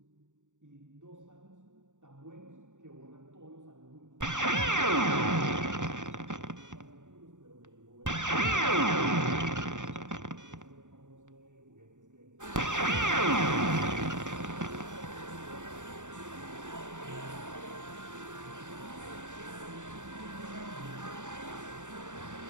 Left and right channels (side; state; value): left; late; 0.86 ms